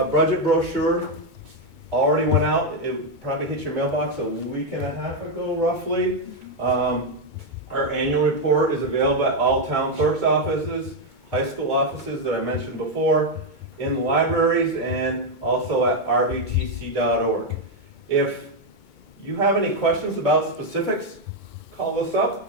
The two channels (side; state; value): left; late; 2.2 ms